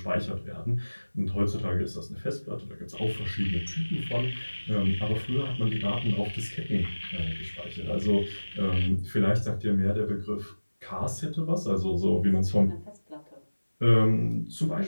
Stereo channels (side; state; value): both; inverted; correlation -1.00